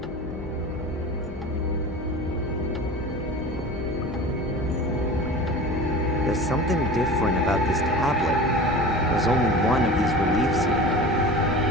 There's something different about this tablet. There's only one of these reliefs here.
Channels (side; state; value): both; normal; correlation 0.35